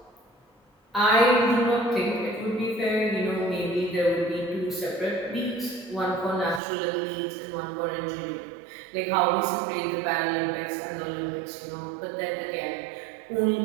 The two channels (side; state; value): left; drops out; at 6.6 s